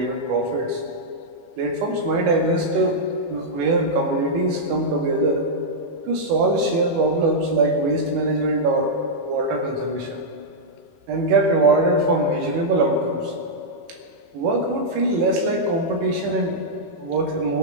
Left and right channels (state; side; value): late; left; 18 ms